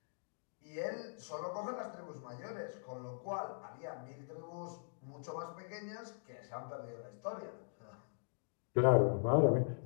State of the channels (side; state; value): right; silent; digital silence